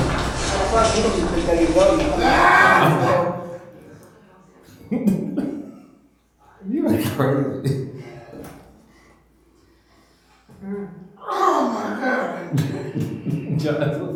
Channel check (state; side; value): identical; both; correlation 1.00